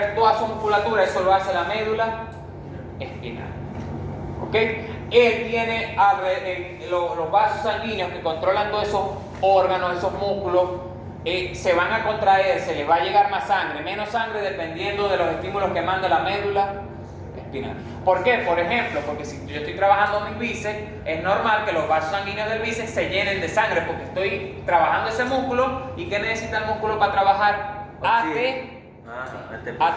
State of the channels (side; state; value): both; identical; correlation 1.00